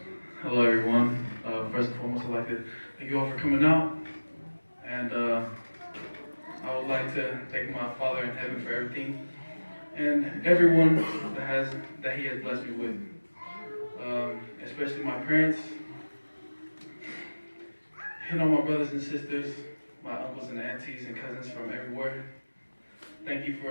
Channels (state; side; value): inverted; both; correlation -1.00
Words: Hello, everyone. First and foremost, I'd like to thank you all for coming out. And I would like to thank my Father in heaven for everything and everyone that He has blessed me with. Especially my parents, and all my brothers and sisters, my uncles and aunties and cousins from everywhere. Thank you